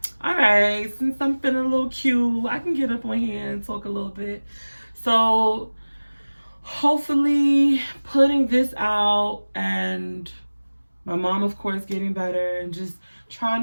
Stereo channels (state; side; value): inverted; both; correlation -1.00